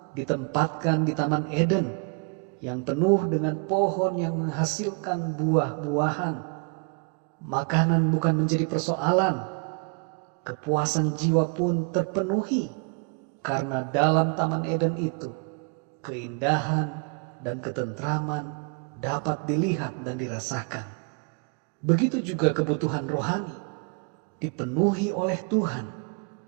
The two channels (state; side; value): quieter; left; 35.8 dB